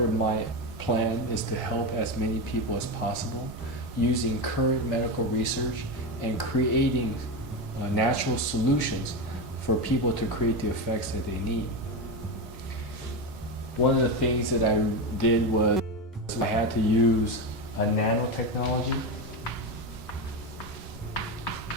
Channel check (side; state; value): both; normal; correlation 0.15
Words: my plan is to help as many people as possible using current medical research and creating natural solutions for people to create the effects that they need. One of the things that I did was I had to use a nanotechnology.